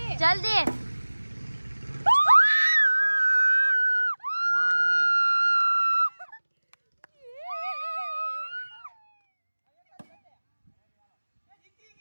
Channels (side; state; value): both; inverted; correlation -1.00